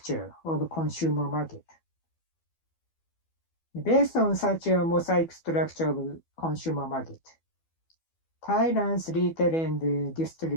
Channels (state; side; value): late; right; 12 ms